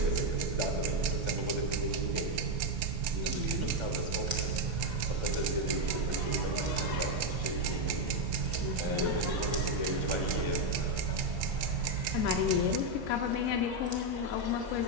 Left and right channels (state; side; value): late; left; 2.2 ms